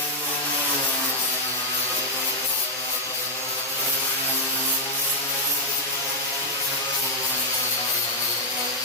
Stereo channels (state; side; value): normal; both; correlation -0.01